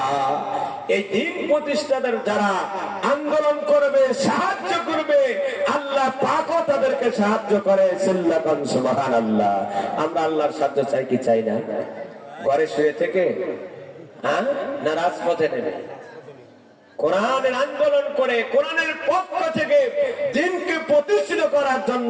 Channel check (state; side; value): identical; both; correlation 1.00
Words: এই দ্বীন প্রতিষ্ঠার যারা আন্দোলন করবে, সাহায্য করবে, আল্লাহ পাকও তাদেরকে সাহায্য করে। সিল্লাকান সুবহানাল্লাহ। আমরা আল্লাহর সাহায্য চাই কি চাই না? ঘরে শুয়ে থেকে না রাজপথে নেমে কোরআনের আন্দোলন করে, কোরআনের পক্ষ থেকে দ্বীনকে প্রতিষ্ঠিত করার